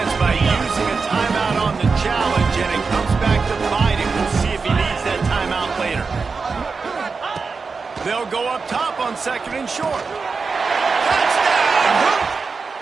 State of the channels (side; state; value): left; quieter; 4.7 dB